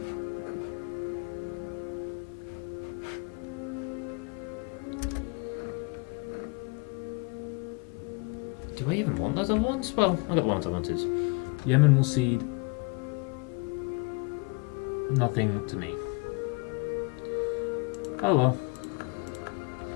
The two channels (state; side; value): quieter; right; 29.1 dB